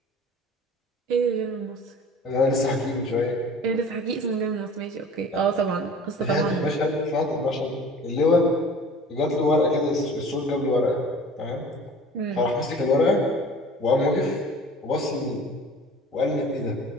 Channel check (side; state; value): both; normal; correlation 0.44